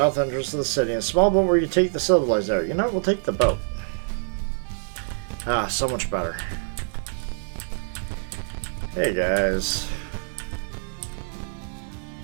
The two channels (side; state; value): left; silent; 61 dB below the other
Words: entrances to the city. A small boat where you take the civilized out. You know, we'll take the boat. Ah, so much better. Hey guys.